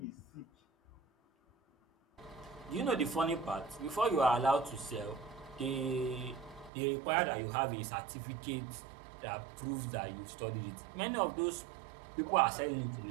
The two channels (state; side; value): drops out; left; at 6.7 s